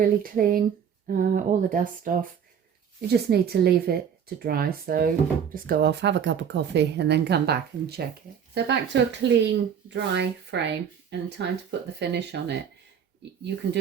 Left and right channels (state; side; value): quieter; left; 7.9 dB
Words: clean, all the dust off, you just need to leave it to dry. So just go off, have a cup of coffee, and then come back and check it. So back to a clean, dry frame, and time to put the finish on it. You can